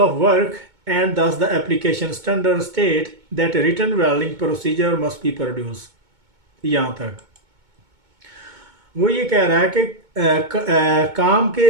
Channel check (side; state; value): left; late; 2.2 ms